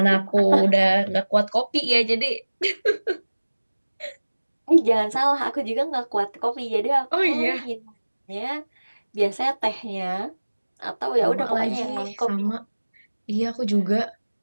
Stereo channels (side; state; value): both; inverted; correlation -1.00